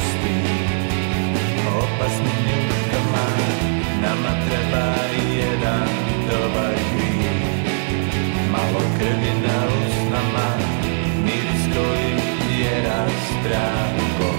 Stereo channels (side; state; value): left; silent; digital silence